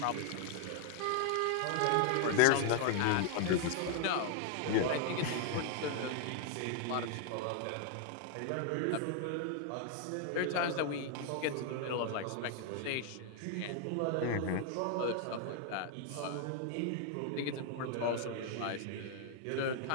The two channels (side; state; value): both; different; correlation 0.00